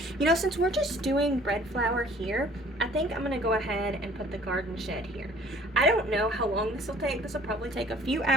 You know, since we're just doing bread flour here, I think I'm gonna go ahead and put the garden shed here. I don't know how long this will take. This will probably take a few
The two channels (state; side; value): normal; both; correlation 0.53